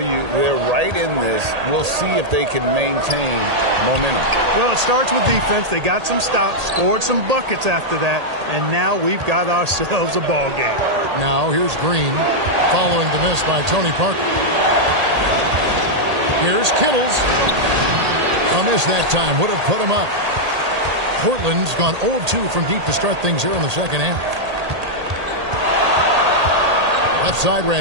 they're right in this. We'll see if they can maintain momentum. Well, it starts with defense. They got some stops, scored some buckets after that, and now we've got ourselves a ball game. Now here's Green following the miss by Tony Parker. Here's Kittles. A miss that time would have put him up. Portland's gone 0 of 2 from deep to start things here in the second half. Left side,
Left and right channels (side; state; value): left; late; 1.8 ms